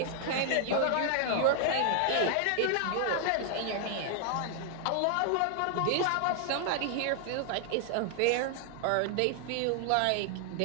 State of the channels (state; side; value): different; both; correlation 0.00